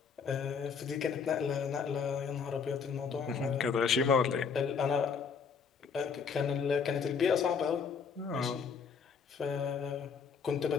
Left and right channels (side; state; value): right; quieter; 6.0 dB